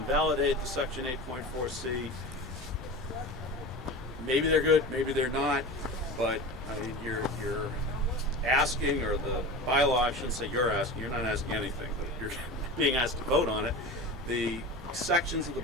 the section 8.4C? Maybe they're good, maybe they're not, but I mean, you're asking, or the bylaw, I shouldn't say you're asking, you're not asking anything, but you're being asked to vote on it. The sections of the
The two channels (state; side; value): normal; both; correlation 0.31